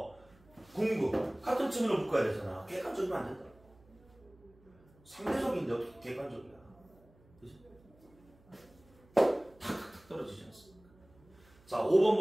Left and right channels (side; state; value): right; noise; hum, 28 dB below the sound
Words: 궁극. 같은 층으로 묶어야 되잖아. 객관적이면 안 된다. 상대적인데 어떻게 객관적이야? 그치? 탁탁탁 떨어지지 않습니까? 자, 5번